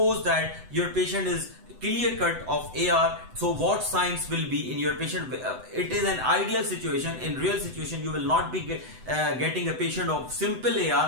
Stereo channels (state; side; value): late; left; 7.9 ms